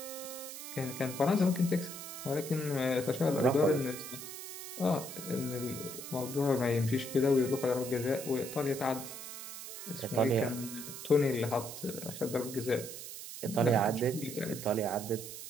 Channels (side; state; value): right; noise; hiss, 10 dB below the sound